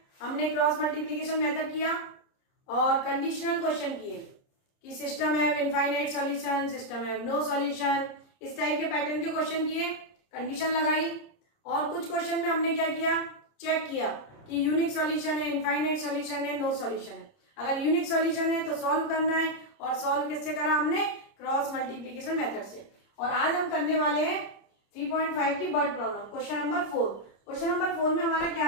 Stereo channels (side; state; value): right; late; 30 ms